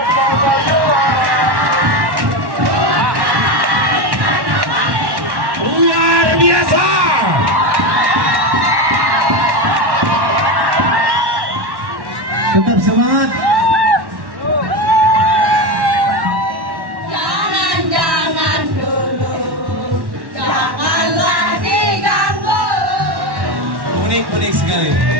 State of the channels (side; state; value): left; late; 1.1 ms